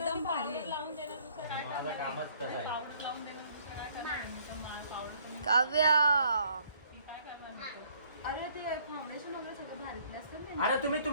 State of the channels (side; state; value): both; inverted; correlation -0.62